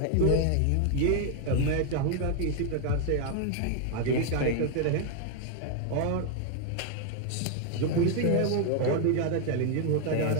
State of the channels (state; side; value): different; both; correlation 0.00